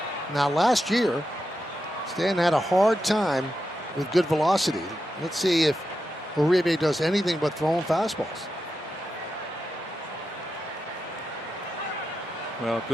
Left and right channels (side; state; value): both; normal; correlation 0.88